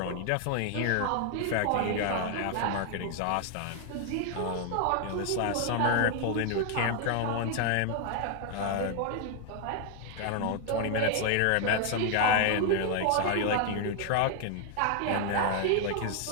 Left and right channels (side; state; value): both; different; correlation 0.00